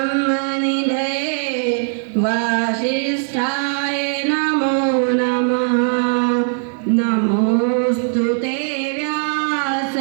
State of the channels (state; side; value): silent; left; 66 dB below the other